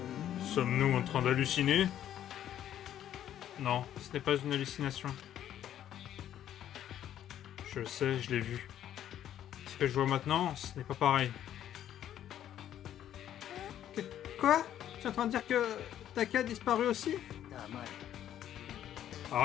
Sommes-nous en train d'halluciner? Non, ce n'est pas une hallucination. Je le sais, je l'ai vu. Ce que je vois maintenant, ce n'est pas pareil. Quoi? Tu es en train de dire que Taka a disparu aussi?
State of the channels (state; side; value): quieter; right; 11.0 dB